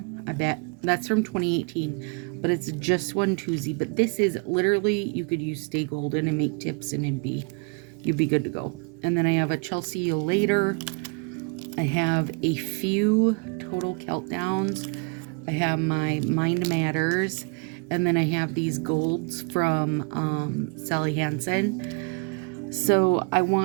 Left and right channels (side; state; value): left; quieter; 32.5 dB